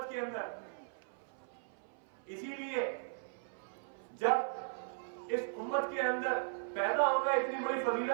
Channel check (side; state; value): left; silent; 53 dB below the other